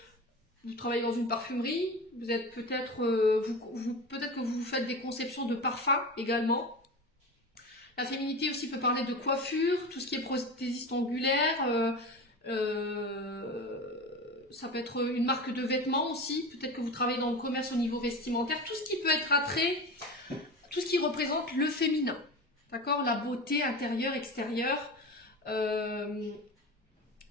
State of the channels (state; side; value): normal; both; correlation 0.28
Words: vous travaillez dans une parfumerie, vous êtes peut-être, peut-être que vous faites des conceptions de parfums également. La féminité aussi peut parler de coiffure, tout ce qui est prothésiste angulaire, ça peut être une marque de vêtements aussi, peut-être que vous travaillez dans le commerce au niveau vestimentaire, tout ce qui peut être attrait, tout ce qui représente le féminin, d'accord? La beauté intérieure, extérieure.